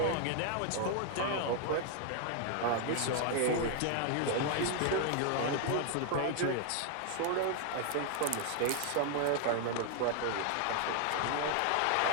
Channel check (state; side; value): different; both; correlation 0.00